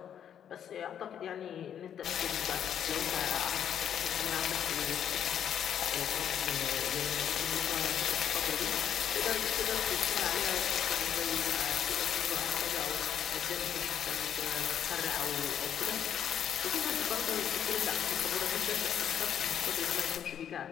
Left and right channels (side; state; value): right; quieter; 9.2 dB